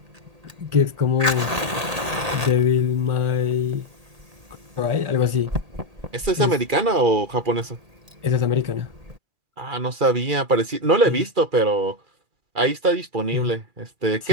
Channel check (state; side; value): late; left; 1.8 ms